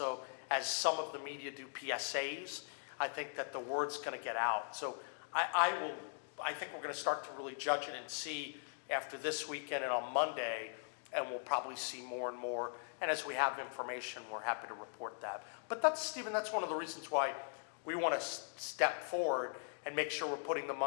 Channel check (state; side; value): silent; right; digital silence